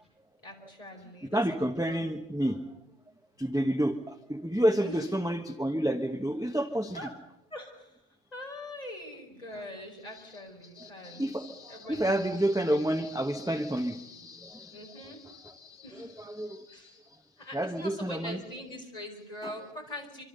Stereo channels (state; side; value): normal; both; correlation 0.85